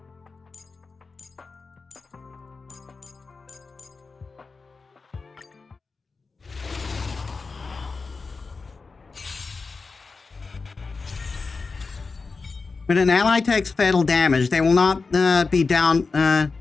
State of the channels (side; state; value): right; quieter; 4.3 dB